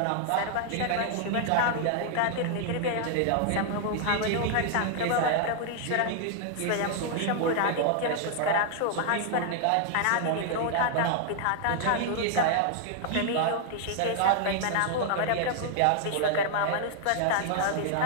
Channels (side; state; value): both; different; correlation 0.00